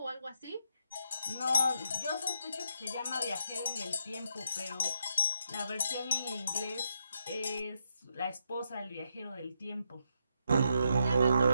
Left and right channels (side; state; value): both; inverted; correlation -0.80